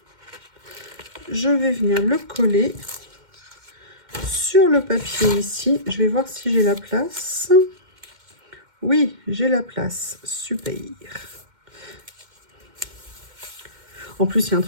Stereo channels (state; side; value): late; left; 2.1 ms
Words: Je vais venir le coller sur le papier ici. Je vais voir si j'ai la place. Oui, j'ai la place. Super. En plus, il y a un